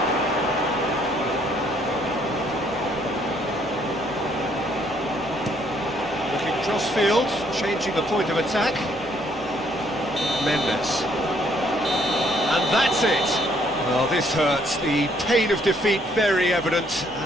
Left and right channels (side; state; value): both; normal; correlation 0.67